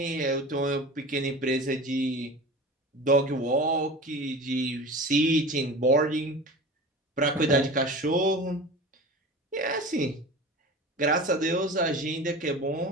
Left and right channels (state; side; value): normal; both; correlation 0.34